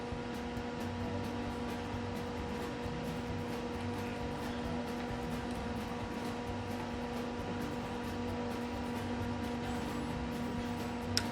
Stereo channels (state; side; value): identical; both; correlation 1.00